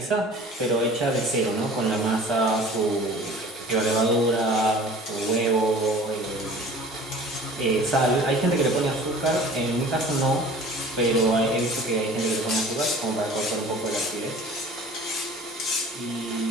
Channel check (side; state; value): both; normal; correlation 0.45